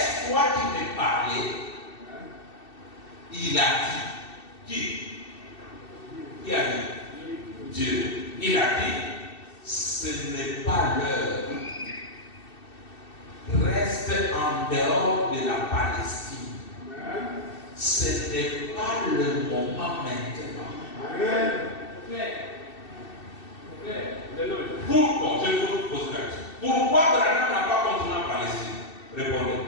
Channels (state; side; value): late; right; 2.7 ms